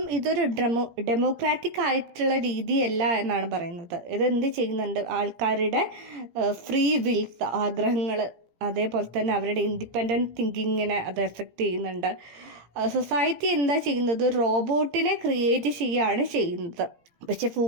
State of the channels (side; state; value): left; late; 17 ms